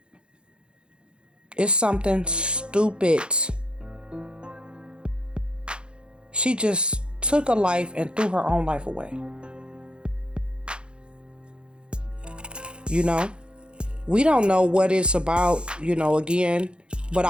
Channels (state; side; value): late; left; 0.054 ms